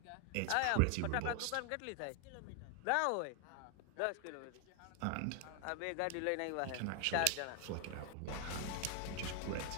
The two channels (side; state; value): both; different; correlation 0.00